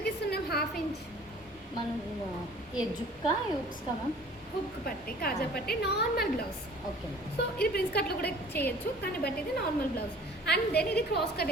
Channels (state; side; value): normal; both; correlation 0.48